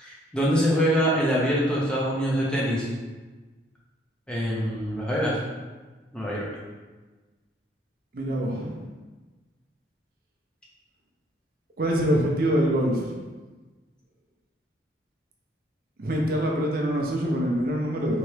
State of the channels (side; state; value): both; normal; correlation 0.65